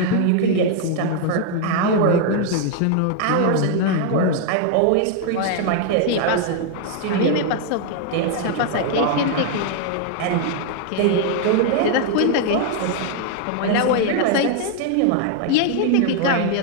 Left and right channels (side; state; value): both; different; correlation 0.00